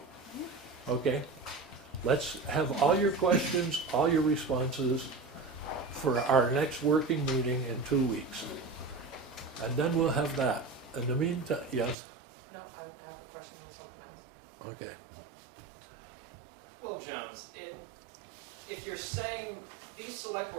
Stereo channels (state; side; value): drops out; left; at 12.0 s